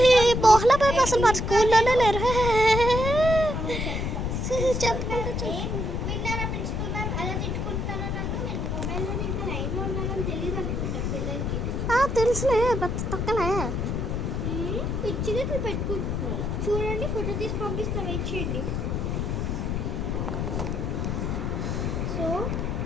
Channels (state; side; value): noise; left; rumble, 1 dB below the sound